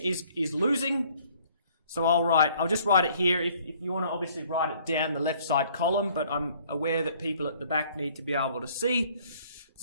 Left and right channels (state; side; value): inverted; both; correlation -0.59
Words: losing. So I'll just write it here. If you want to obviously write it down the left side column, but I'm aware that people at the back need to be able to see.